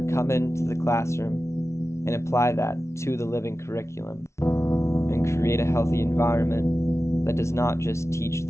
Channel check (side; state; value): right; late; 0.13 ms